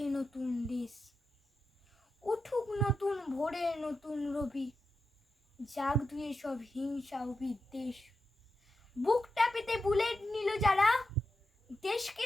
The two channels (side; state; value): both; normal; correlation 0.88